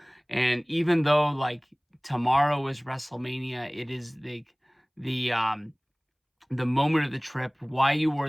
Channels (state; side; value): identical; both; correlation 1.00